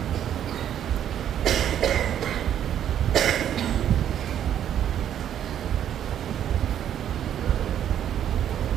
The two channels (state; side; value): quieter; left; 10.2 dB